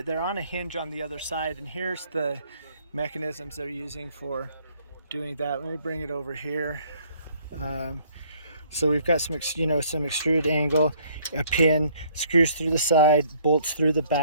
They're on a hinge on the other side, and here's the mechanisms they're using for doing that. Let me bring it over here. So we've got some extruded angle, a pin, screws through the side, bolts through the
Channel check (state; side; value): inverted; both; correlation -0.62